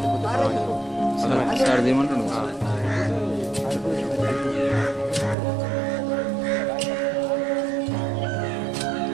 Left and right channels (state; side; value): drops out; left; at 5.4 s